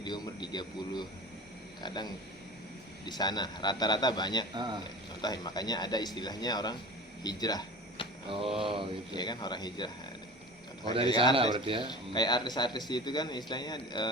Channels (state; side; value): normal; both; correlation 0.36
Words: umur 30, kadang di sana rata-rata banyak contoh, makanya ada istilahnya orang hijrah. Oh gitu Ya kan, orang hijrah. Oh dari sana berarti ya. Kayak artis-artis itu kan istilahnya